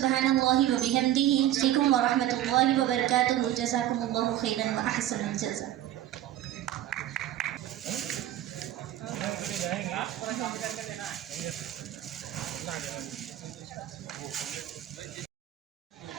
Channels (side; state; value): left; quieter; 12.9 dB